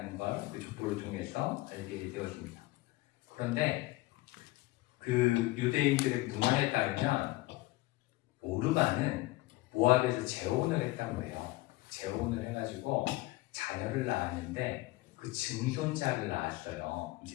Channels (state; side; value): quieter; right; 20.0 dB